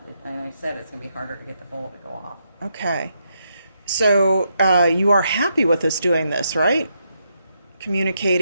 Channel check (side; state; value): both; inverted; correlation -0.80